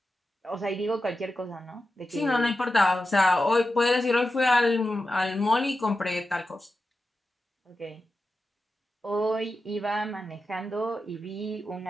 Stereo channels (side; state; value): both; normal; correlation 0.91